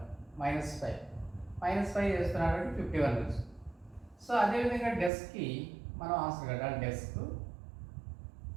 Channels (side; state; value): left; drops out; at 5.1 s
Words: -5 చేస్తున్నాడు అంటే 51 నుంచి. సో అదేవిధంగా డెస్క్కి మనం ఆన్సర్ కట్టాలి. డెస్క్